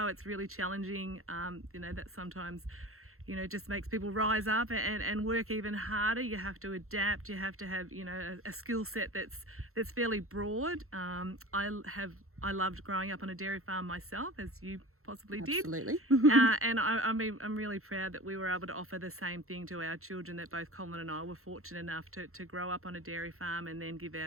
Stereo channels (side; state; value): left; late; 0.62 ms